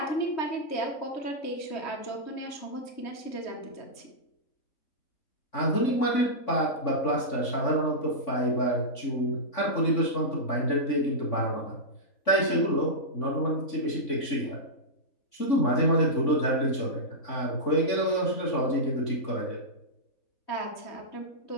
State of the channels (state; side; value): late; right; 3.5 ms